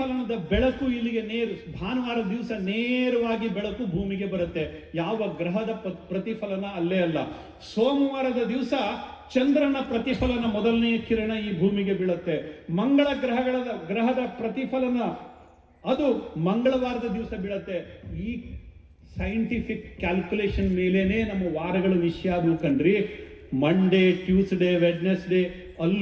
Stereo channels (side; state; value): both; identical; correlation 1.00